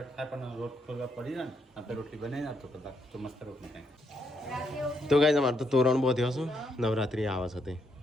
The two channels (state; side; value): normal; both; correlation 0.77